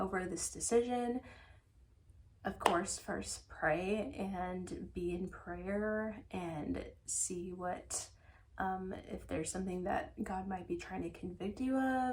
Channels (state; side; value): identical; both; correlation 1.00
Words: this decision. Of course, first pray and be in prayer and see what, if there's something that God might be trying to convict you